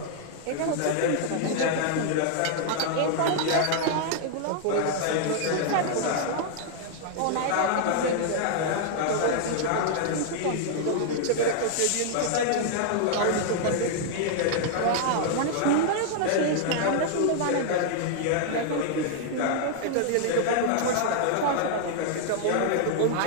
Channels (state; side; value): different; both; correlation -0.01